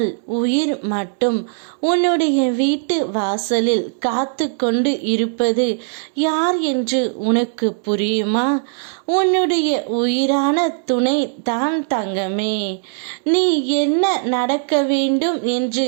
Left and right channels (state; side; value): silent; left; 66 dB below the other